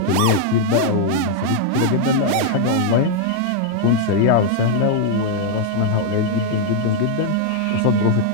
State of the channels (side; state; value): both; different; correlation 0.00